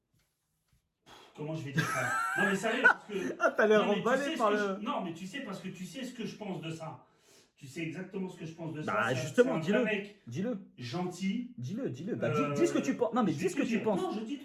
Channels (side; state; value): both; identical; correlation 1.00